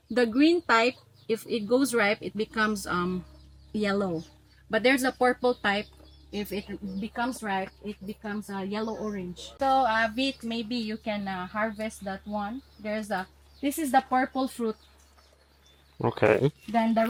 green type. If it goes ripe, it becomes yellow. But there's a purple type. If it becomes ripe, it becomes yellow orange. So Vit, maybe you can harvest that one. This is the purple fruit. Okay. Then the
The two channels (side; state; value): both; identical; correlation 1.00